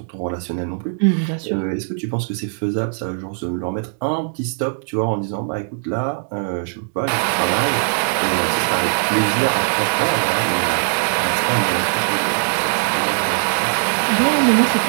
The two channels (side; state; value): left; silent; digital silence